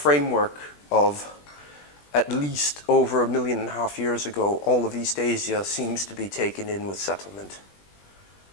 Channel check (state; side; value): late; right; 20 ms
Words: of at least over 1.5 million years ago, all of East Asia seems to be taken in with settlement.